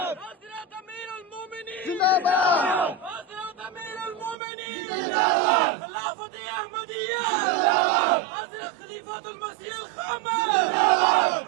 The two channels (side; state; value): left; drops out; at 4.4 s